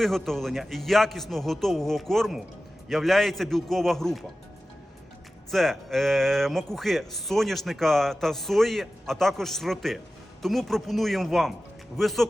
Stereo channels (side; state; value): both; normal; correlation 0.95